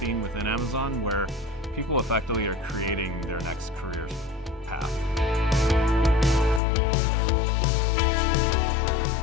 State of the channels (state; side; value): drops out; right; at 6.6 s